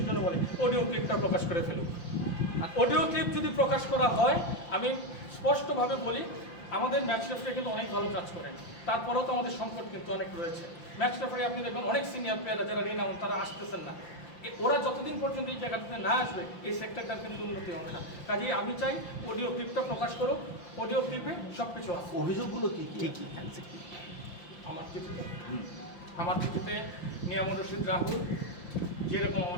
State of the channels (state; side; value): late; right; 5.8 ms